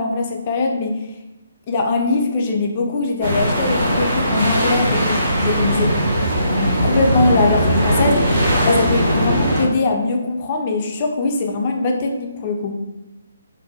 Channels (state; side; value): inverted; both; correlation -0.72